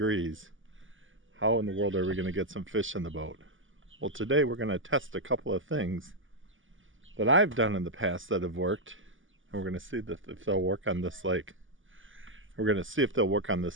How in the world are we going to get some fish in the boat? Well, today we're going to test a couple of things that I've done in the past that have worked, and we're going to see if they'll work on this lake. We're going to see if they'll work on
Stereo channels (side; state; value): left; late; 0.57 ms